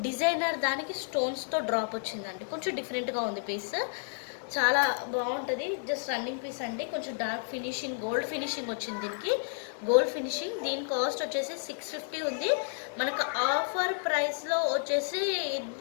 డిజైనర్ దానికి స్టోన్స్తో డ్రాప్ వచ్చిందండి. కొంచెం డిఫరెంట్గా ఉంది పీస్, చాలా బాగుంటుంది. జస్ట్ రన్నింగ్ పీస్ అండి. కొంచెం డార్క్ ఫినిషింగ్, గోల్డ్ ఫినిషింగ్ వచ్చింది దీనికి, గోల్డ్ ఫినిషింగ్. దీని కాస్ట్ వచ్చేసి 650 ఉంది. మనకు ఆఫర్ ప్రైస్లో వచ్చేసి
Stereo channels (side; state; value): right; silent; digital silence